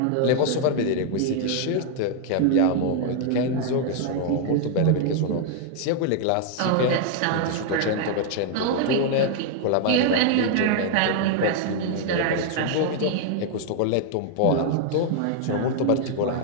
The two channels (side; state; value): both; different; correlation 0.00